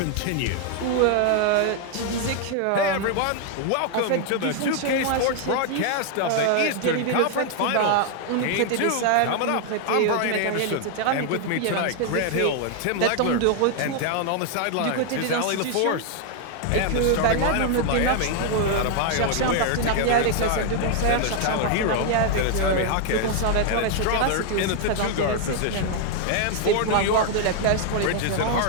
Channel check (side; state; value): both; different; correlation 0.00